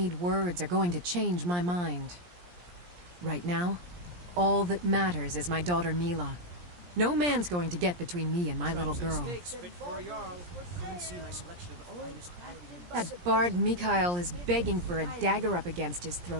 words are going to change my mind. Right now, all that matters is my daughter Mila. No man's going to get between me and my little girl. That bard Mikhail is begging for a dagger up against his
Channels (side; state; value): left; late; 17 ms